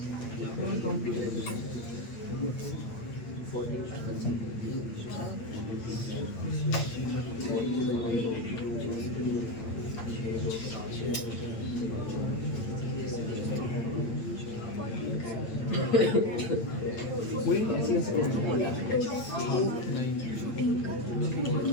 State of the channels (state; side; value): late; right; 8.7 ms